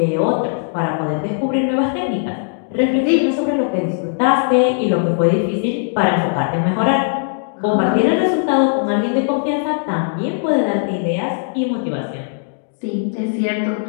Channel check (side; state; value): right; silent; digital silence